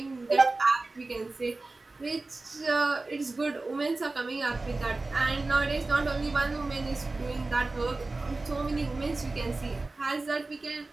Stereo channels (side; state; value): left; quieter; 3.3 dB